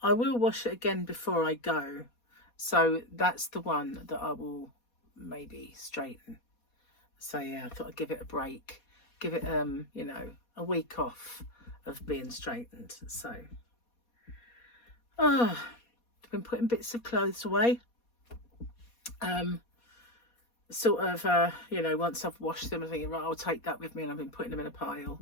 I will wash it again before I go. So that's the one that I will maybe straighten. So yeah, I thought I'd give it a break. Give it, you know, a week off of being straightened. So, I've been putting bits of clothes away. Sort of, you know, once I've washed them, I'm thinking, right, I'll take that with me, and I've been putting them in a pile,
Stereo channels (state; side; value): late; right; 4.2 ms